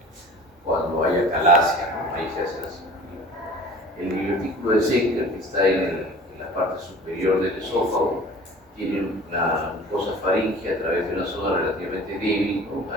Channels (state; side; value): normal; both; correlation 0.43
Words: cuando haya calasia, ¿no? Ahí se hace la cirugía. El divertículo de Zenker, que está en la parte superior del esófago, tiene una mucosa faríngea a través de una zona relativamente débil, ¿no?